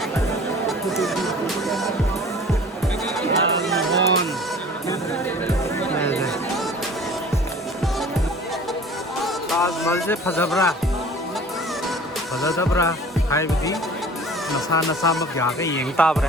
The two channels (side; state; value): both; normal; correlation 0.45